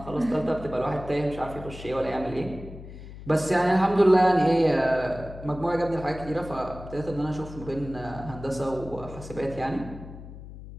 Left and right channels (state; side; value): noise; left; hum, 14 dB below the sound